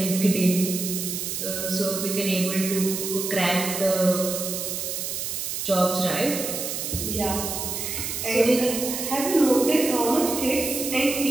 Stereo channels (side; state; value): right; noise; hiss, 4 dB below the sound